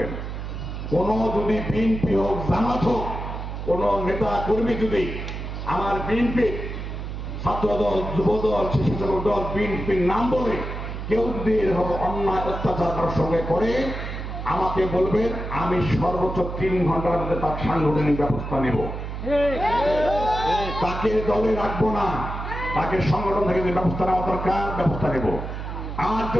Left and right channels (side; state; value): right; noise; hum, 6 dB below the sound